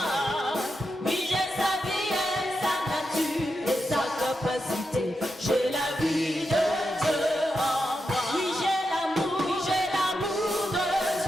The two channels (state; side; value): normal; both; correlation 0.87